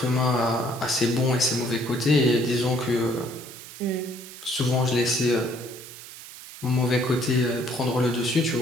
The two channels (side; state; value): right; noise; hiss, 15 dB below the sound